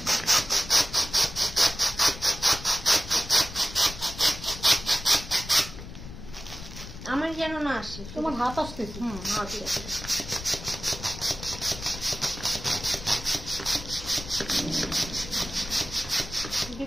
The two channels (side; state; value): left; noise; rumble, 12 dB below the sound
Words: আমার যেন না আসে। তোমার হাত আসতেছে। হাত আসে।